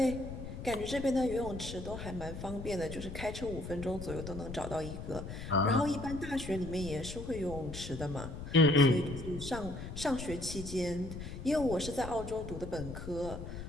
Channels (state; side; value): noise; left; rumble, 9 dB below the sound